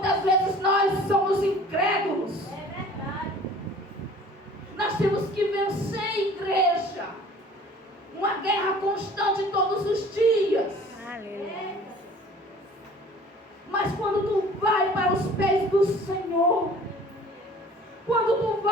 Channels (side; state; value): both; normal; correlation 0.48